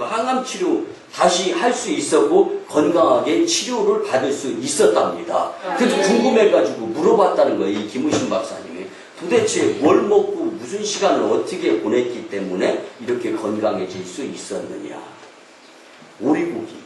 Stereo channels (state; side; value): identical; both; correlation 1.00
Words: 항암 치료 다시 할 수 있었고 건강하게 치료를 받을 수 있었답니다. 그래서 궁금해가지고 물어봤다는 거예요, 이 김의신 박사님이. 도대체 뭘 먹고 무슨 시간을 어떻게 보냈기 때문에 이렇게 건강해질 수 있었느냐. 오리고기.